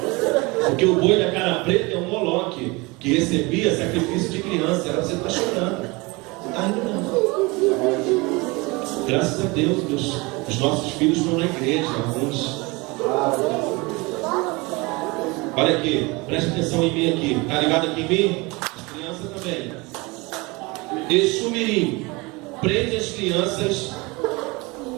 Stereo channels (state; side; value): quieter; left; 25.3 dB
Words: Porque o boi da cara preta é um Moloque que recebia sacrifício de criança. Era você tá chorando. Você tá rindo não. Graças a Deus, os nossos filhos estão na igreja, alguns. Olha aqui, preste atenção em mim aqui. Tá ligado aqui em mim? As crianças também. Exu Mirim prende as crianças